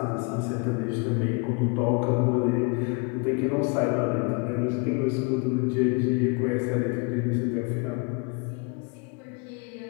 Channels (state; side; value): quieter; right; 32.9 dB